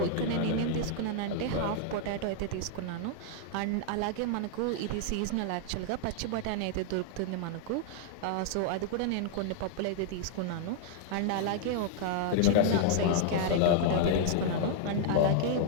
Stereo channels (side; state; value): both; different; correlation 0.00